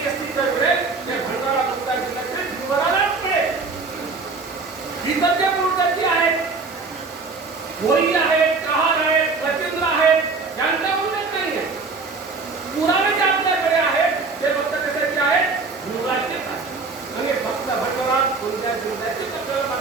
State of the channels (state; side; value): quieter; left; 4.2 dB